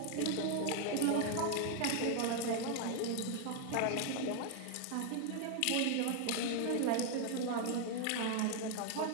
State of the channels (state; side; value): different; both; correlation 0.00